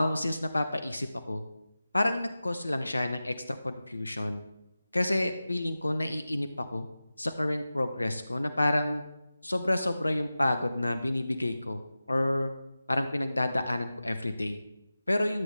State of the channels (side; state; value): both; inverted; correlation -0.95